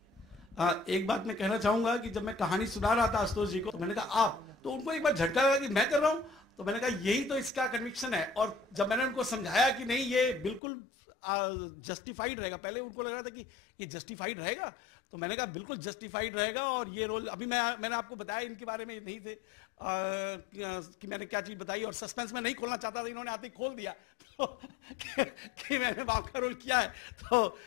एक बात मैं कहना चाहूंगा कि जब मैं कहानी सुना रहा था आशुतोष जी को, तो मैंने कहा आप, तो उनको एक बार झटका लगा कि मैं कर रहा हूं, तो मैंने कहा यही तो इसका कन्विक्शन है। और जब मैंने उनको समझाया कि नहीं ये बिल्कुल जस्टिफाइड रहेगा, पहले उनको लग रहा था कि ये जस्टिफाइड रहेगा, तो मैंने कहा बिल्कुल जस्टिफाइड रहेगा। और ये रोल अभी मैंने आपको बताया इनके बारे में नहीं थे कि मैंने क्या चीज बताई, और सस्पेंस में नहीं खोलना चाहता था, इन्होंने आते ही खोल दिया तो कि मैंने बाप का रोल किया है। तो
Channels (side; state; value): right; drops out; at 10.6 s